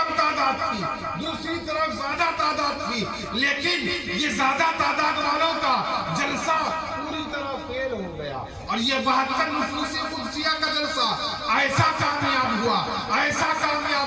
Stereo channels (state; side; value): identical; both; correlation 1.00